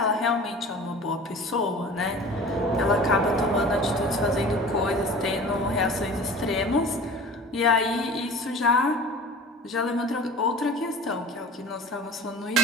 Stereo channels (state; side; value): normal; both; correlation 0.40